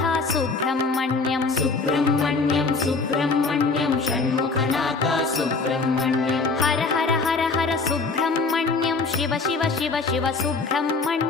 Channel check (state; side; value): quieter; right; 4.1 dB